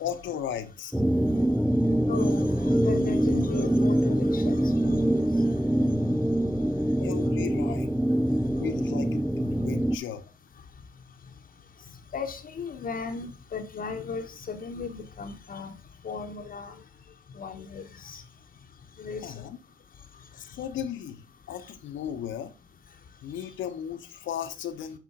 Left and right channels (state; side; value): normal; both; correlation 0.89